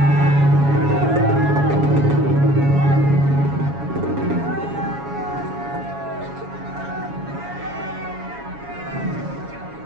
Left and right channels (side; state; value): left; late; 7.2 ms